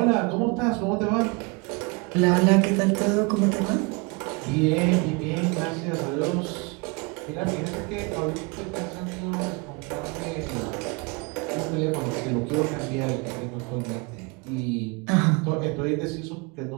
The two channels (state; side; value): quieter; left; 28.9 dB